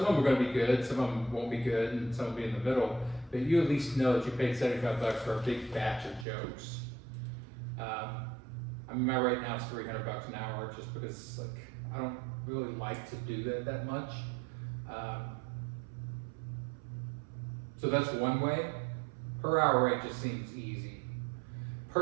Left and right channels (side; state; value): left; drops out; at 6.2 s